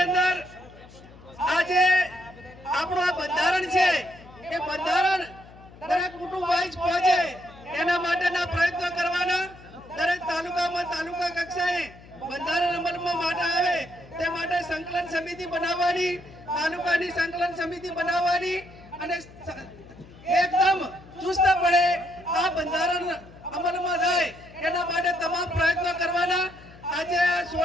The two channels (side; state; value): left; noise; hum, 21 dB below the sound